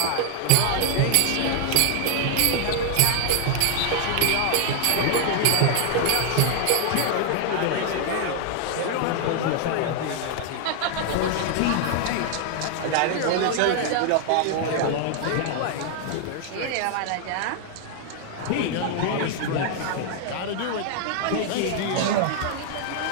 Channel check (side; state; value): both; different; correlation 0.00